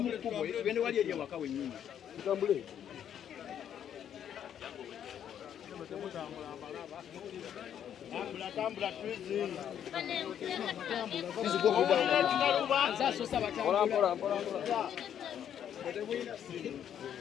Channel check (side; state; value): right; quieter; 9.5 dB